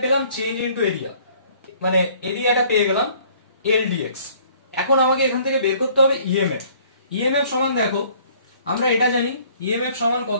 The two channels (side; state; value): both; inverted; correlation -0.57